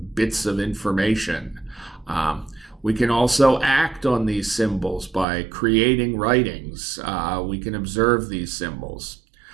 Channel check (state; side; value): drops out; left; at 5.2 s